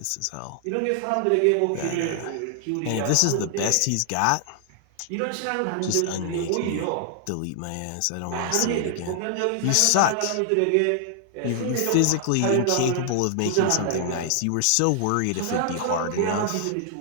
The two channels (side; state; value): both; different; correlation 0.00